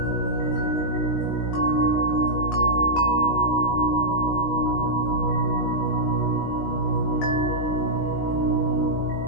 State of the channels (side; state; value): right; late; 19 ms